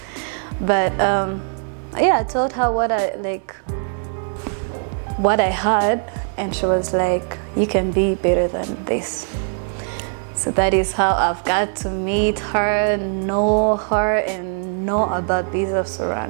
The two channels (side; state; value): left; silent; 58 dB below the other